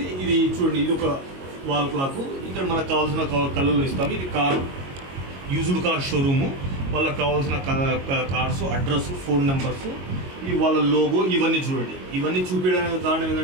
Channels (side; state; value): left; late; 22 ms